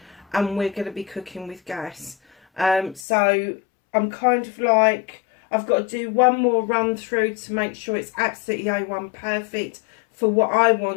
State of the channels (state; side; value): drops out; right; at 3.1 s